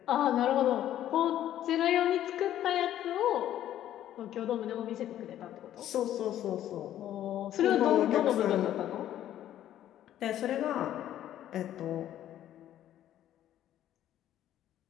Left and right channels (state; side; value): quieter; right; 11.9 dB